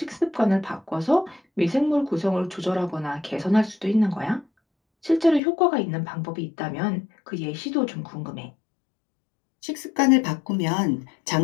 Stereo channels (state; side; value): drops out; right; at 5.4 s